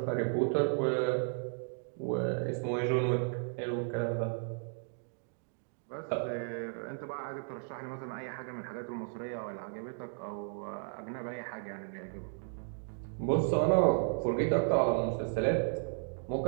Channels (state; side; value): silent; left; 55 dB below the other